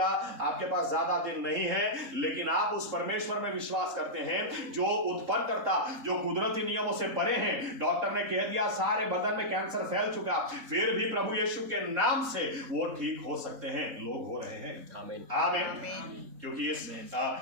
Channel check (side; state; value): left; late; 3.8 ms